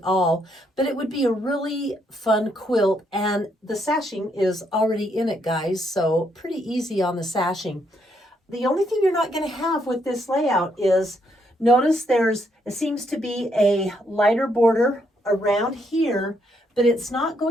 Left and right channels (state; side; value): normal; both; correlation 0.74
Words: all, but it would be a really fun quilt. And the sashing is already in it, guys, so pretty easy on the sashing. The only thing you're not going to have with this layout is, notice it seems to be a lighter border around here, but it's not